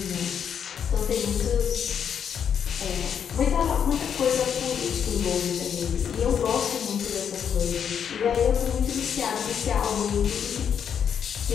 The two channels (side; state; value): right; quieter; 8.0 dB